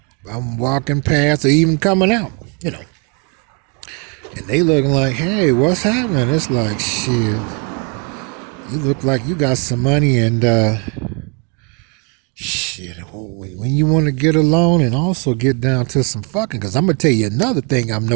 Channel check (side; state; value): left; quieter; 34.7 dB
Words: I'm walking past or even coming out, And they looking like, hey, what's happening? It's like, shit, you look like you got some money and, shit, when you want to get alone and also get down to some fucking, because I'm going to tell you another thing I'm